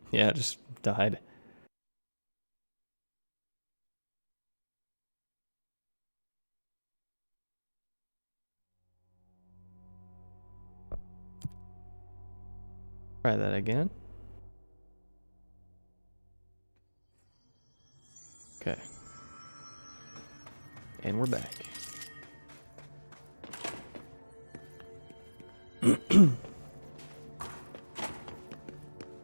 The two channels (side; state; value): both; inverted; correlation -1.00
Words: Yeah, it just died. Try that again. Okay. And we're back.